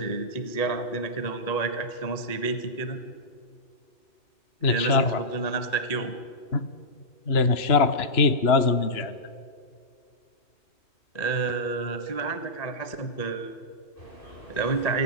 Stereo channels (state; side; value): late; right; 2.9 ms